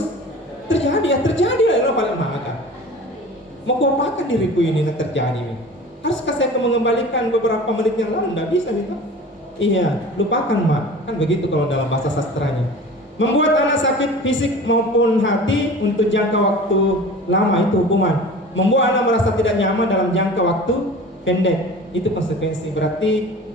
terjadi, ya terjadi lah, paling maka. Mau kuapakan diriku ini terjadi? Haruskah saya mengembalikan beberapa menit yang lalu? Tidak bisa gitu. Iya, lupakan mak. Kan begitu kalau dalam bahasa sastranya. Membuat anak sakit fisik maupun hati untuk jangka waktu lama itu hukuman. Membuat anak merasa tidak nyaman dalam jangka waktu pendek itu konsekuensi. Berarti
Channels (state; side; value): normal; both; correlation 0.39